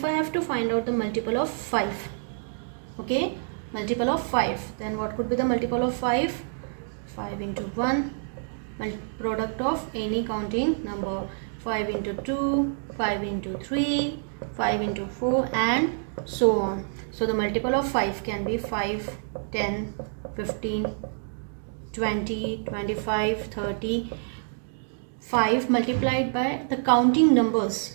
I have to find out the multiple of 5, okay, multiple of 5, then what could be the multiple of 5? 5 into 1, product of any counting number, 5 into 2, 5 into 3, 5 into 4, and so on. So the multiple of 5 can be 5, 10, 15, 20, 25, 30. 5 multiplied by the counting numbers.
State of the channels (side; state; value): left; silent; digital silence